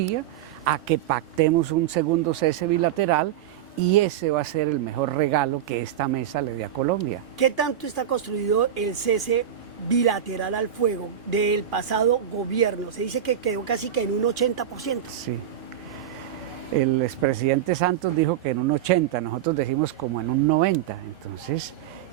a que pactemos un segundo cese bilateral y ese va a ser el mejor regalo que esta mesa le dé a Colombia. ¿Qué tanto está construido el cese bilateral al fuego del pasado gobierno? Se dice que quedó casi que en un 80%. Sí. El expresidente Santos dijo que en un 80%, nosotros decimos como en un 90%. Entonces,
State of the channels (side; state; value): left; quieter; 10.1 dB